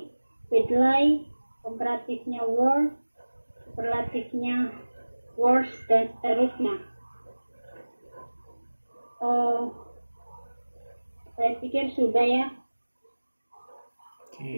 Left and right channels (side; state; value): both; inverted; correlation -1.00